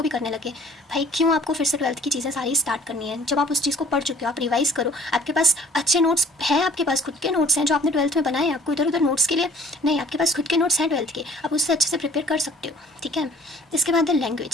भी करने लगे। भाई क्यों आपको फिर से 12th की चीज़ें सारी स्टार्ट करनी है जब आप उस चीज़ को पढ़ चुके हो। आप रिवाइज़ करो, आपके पास अच्छे नोट्स हैं, आपके पास खुद के नोट्स हैं जो आपने 12th में बनाए हैं। आपको इधर उधर नोट्स के लिए नहीं, आपके पास खुद के नोट्स हैं 12th के, आप उससे अच्छे से प्रिपेयर कर सकते हो। ठीक है, इसके बाद है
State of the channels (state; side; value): normal; both; correlation 0.53